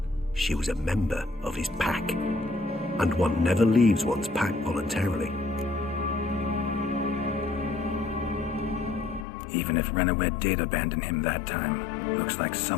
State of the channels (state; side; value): drops out; right; at 9.2 s